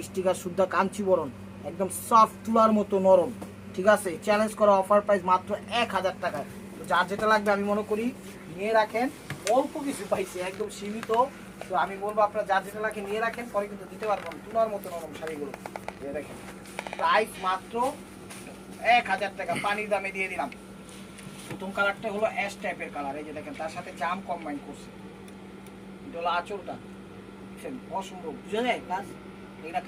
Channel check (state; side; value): identical; both; correlation 1.00